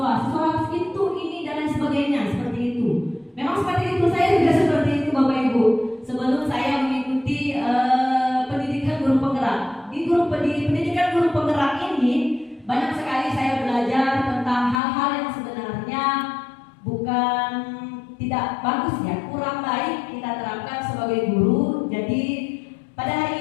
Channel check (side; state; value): right; drops out; at 14.8 s